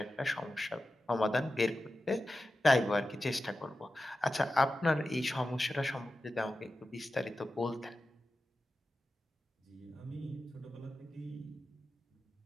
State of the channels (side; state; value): both; normal; correlation 0.93